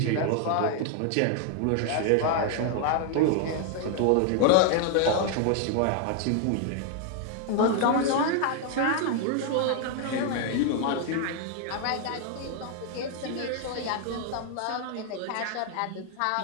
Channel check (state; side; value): different; both; correlation 0.00